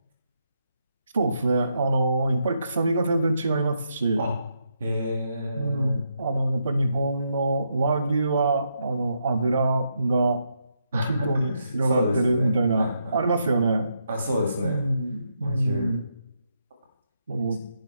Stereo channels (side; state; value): both; inverted; correlation -0.79